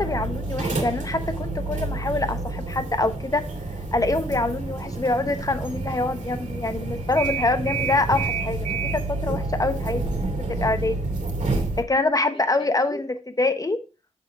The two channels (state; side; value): normal; both; correlation 0.58